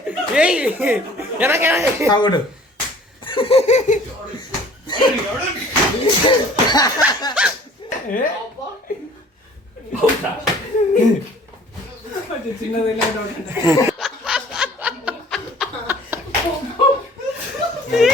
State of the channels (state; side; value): normal; both; correlation 0.51